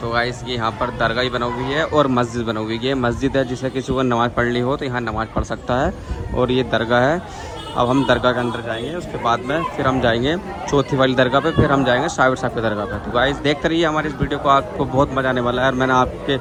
तो आइस की यहाँ पर दरगाह ही बनी हुई है और मस्जिद बनी हुई है। मस्जिद है जिसे किसी को नमाज़ पढ़नी हो तो यहाँ नमाज़ पढ़ सकता है, और ये दरगाह है। अब हम दरगाह के अंदर जाएंगे, उसके बाद में फिर हम जाएंगे चौथी वाली दरगाह पे, फिर हम जाएंगे साबिर साहब की दरगाह पे। तो गाइस देखते रहिए हमारी इस वीडियो को, आपको बहुत मज़ा आने वाला है। और मैंने आपके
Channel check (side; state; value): both; identical; correlation 1.00